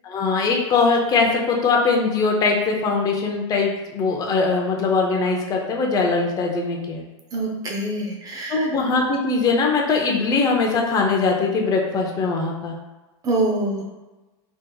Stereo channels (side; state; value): right; quieter; 3.3 dB